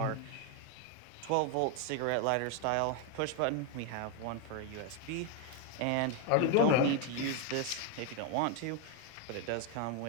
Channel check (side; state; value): both; different; correlation 0.01